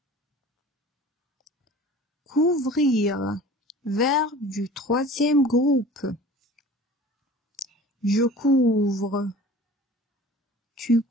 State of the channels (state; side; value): normal; both; correlation 0.43